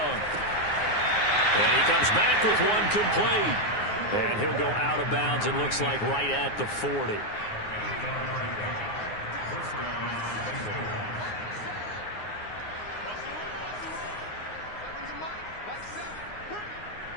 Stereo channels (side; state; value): right; late; 9.6 ms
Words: And he comes back with one complete. And he'll go out of bounds, it looks like, right at the 40.